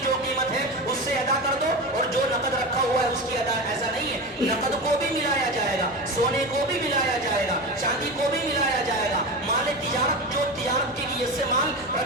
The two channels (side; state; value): both; normal; correlation 0.24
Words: جو قیمت ہے اس سے ادا کر دو اور جو نقد رکھا ہوا ہے اس کی ادا، ایسا نہیں ہے، نقد کو بھی ملایا جائے گا، سونے کو بھی ملایا جائے گا، چاندی کو بھی ملایا جائے گا، مال تجارت جو تجارت کی نیت سے مال